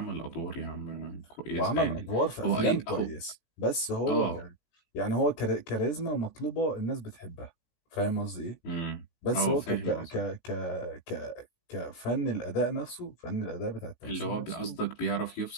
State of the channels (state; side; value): late; right; 18 ms